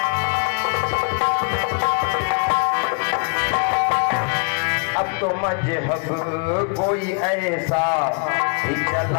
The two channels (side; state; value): right; quieter; 39.5 dB